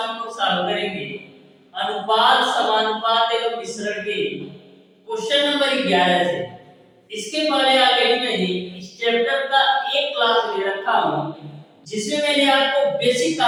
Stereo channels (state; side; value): identical; both; correlation 1.00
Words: हम लोग सॉल्व करेंगे अनुपात समानुपात एवं मिश्रण के क्वेश्चन नंबर 11 से। इसके पहले ऑलरेडी मैंने इस चैप्टर का एक क्लास ले रखा हूं जिसमें मैंने आपको बेसिक